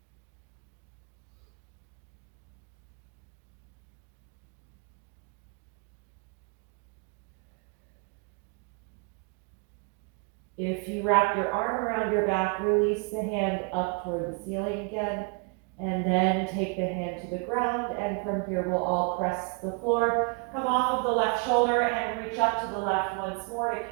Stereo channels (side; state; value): left; quieter; 33.9 dB